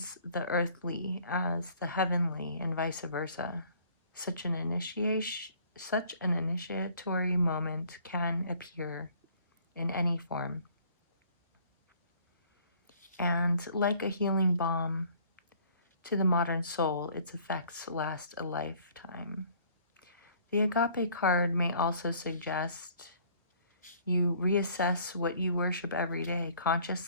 the earthly as the heavenly and vice versa. Such an initiatory moment can appear in any form. And like a healing balm to the modern soul, its effects last a lifetime. The agape card may also suggest you reassess what you worship every day,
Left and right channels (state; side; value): inverted; both; correlation -0.57